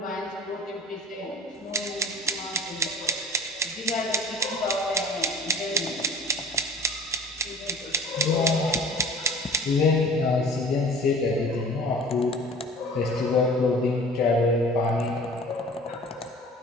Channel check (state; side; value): normal; both; correlation 0.45